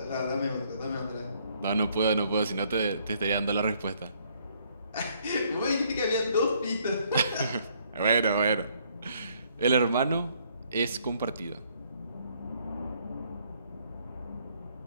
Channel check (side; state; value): both; inverted; correlation -0.66